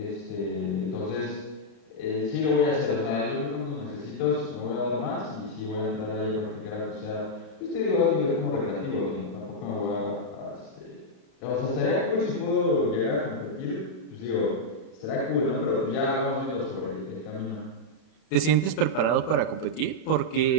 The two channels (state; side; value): late; right; 32 ms